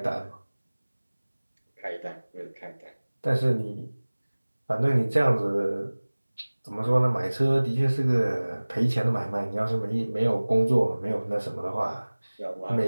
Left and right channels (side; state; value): both; inverted; correlation -1.00